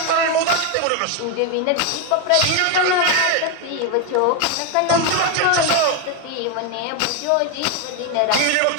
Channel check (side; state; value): both; different; correlation 0.02